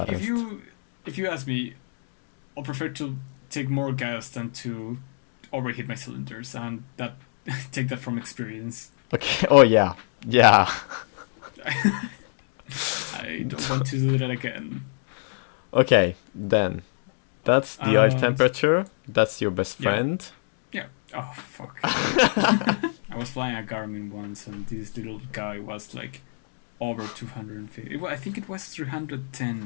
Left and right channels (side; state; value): right; silent; digital silence